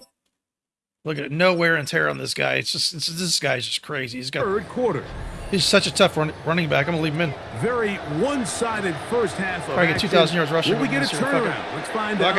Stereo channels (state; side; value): identical; both; correlation 1.00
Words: Look at it, no wear and tear on this guy. This guy's just crazy. third quarter. He's such a tough running back. I'm going to leave him in. Very one-sided first half of Probably get action. 2,000 yards rushing. Will we get a this year. Fuck it. turnaround? Let's find Fuck